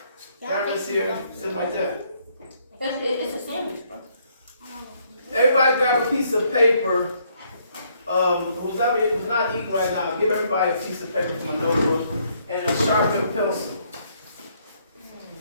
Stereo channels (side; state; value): both; inverted; correlation -0.69